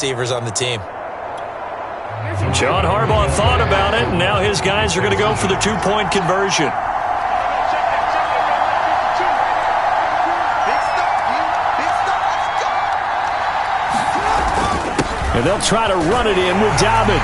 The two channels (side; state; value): both; identical; correlation 1.00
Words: on the team. John Harbaugh thought about it, and now his guys are going to go for the 2-point conversion. And they'll try to run it in with